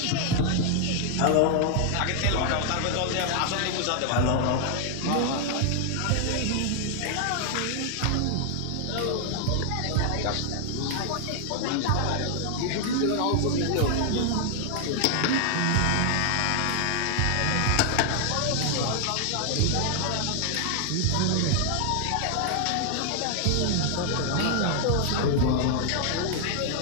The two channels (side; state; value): both; different; correlation 0.00